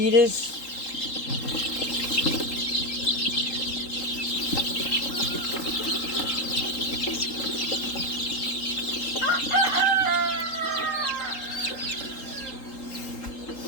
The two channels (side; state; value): right; late; 3.8 ms